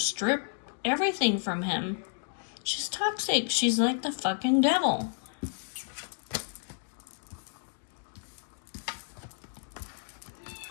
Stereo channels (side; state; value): right; silent; digital silence